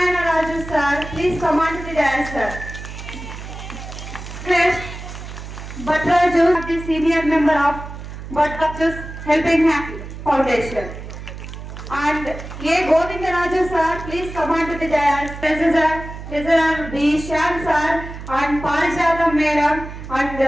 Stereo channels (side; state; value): right; noise; hum, 11 dB below the sound